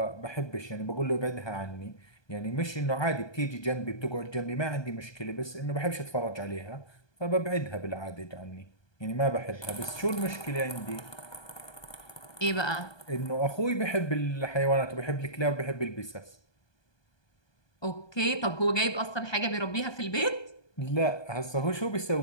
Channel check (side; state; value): right; late; 1.2 ms